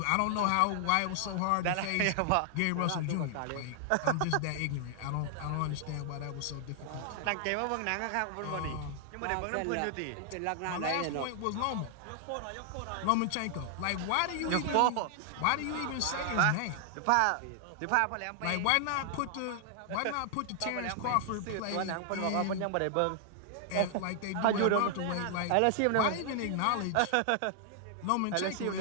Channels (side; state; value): both; different; correlation 0.00